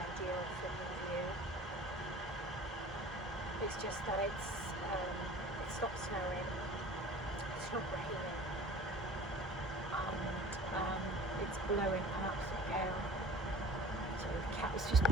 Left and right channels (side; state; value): both; normal; correlation 0.43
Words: filming view. It's just that it stopped snowing, it's not raining, and it's blowing an absolute gale. So the cat was just